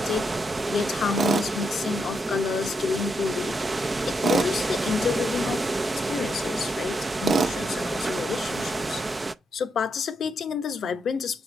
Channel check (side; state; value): both; normal; correlation 0.80